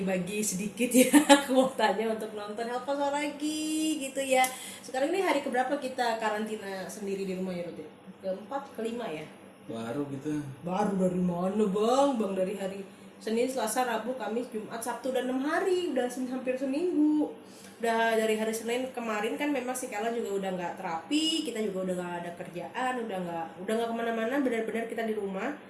sedikit ya kuotanya untuk nonton Help Pasar lagi gitu ya. Sekarang ini hari keberapa kita karantina sendiri di rumah ya, Ruth? Keempat, kelima ya? Baru gitu. Baru dari mana bang? Bang dari hari Senin, Selasa, Rabu, Kamis, Jumat, Sabtu, dan 6 hari. Udah hampir seminggu. Udah dari hari Senin kemarin kan memang si Kala juga udah nggak terapi, kita juga udah nggak ada kerjaan, udah nggak kemana-mana, benar-benar kita di rumah.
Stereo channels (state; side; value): identical; both; correlation 1.00